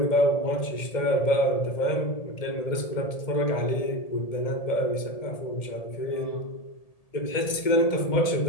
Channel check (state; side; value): late; right; 1.8 ms